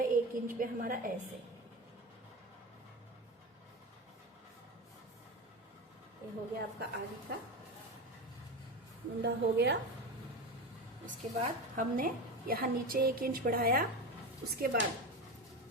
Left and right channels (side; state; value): both; normal; correlation 0.23